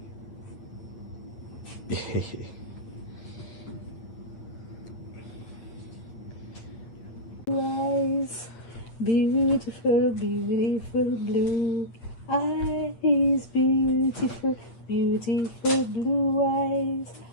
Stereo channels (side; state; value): right; late; 8.7 ms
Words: Eyes, beautiful, beautiful blue eyes, beautiful, beautiful blue eyes.